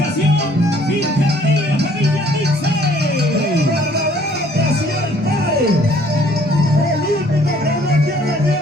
Interliga Familia Tixe.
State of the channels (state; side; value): normal; both; correlation 0.59